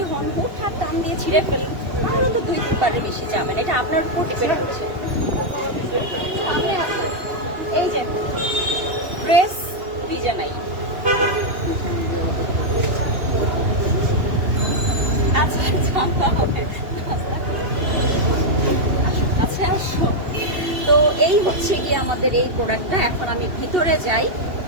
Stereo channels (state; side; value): late; left; 2.7 ms